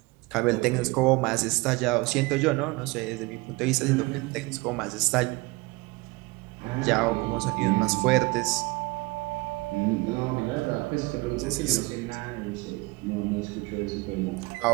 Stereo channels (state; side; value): quieter; left; 23.7 dB